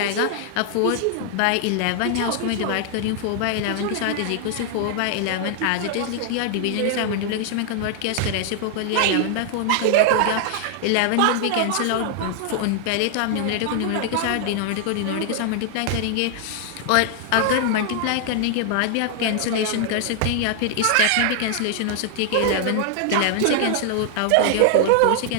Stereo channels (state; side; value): different; both; correlation 0.00